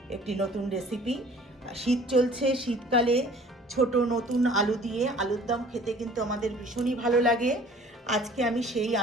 একটি নতুন রেসিপি। শীত চলছে, শীতকালে ছোট নতুন আলু দিয়ে আলুর দম খেতে কিন্তু আমাদের ভীষণই ভালো লাগে। আজকে আমি সেই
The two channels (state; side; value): normal; both; correlation 0.50